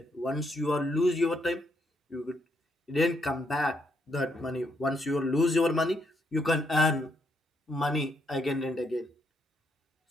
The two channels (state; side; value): normal; both; correlation 0.75